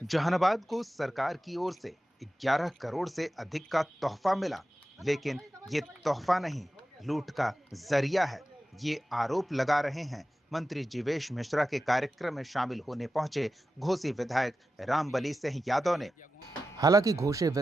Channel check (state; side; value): normal; both; correlation 0.93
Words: जहानाबाद को सरकार की ओर से 11 करोड़ से अधिक का तोहफा मिला, लेकिन ये तोहफा नहीं, लूट का जरिया है। ये आरोप लगा रहे हैं मंत्री जीवेश मिश्रा के कार्यक्रम में शामिल होने पहुंचे घोसी विधायक रामबली सिंह यादव ने। हालांकि घोसी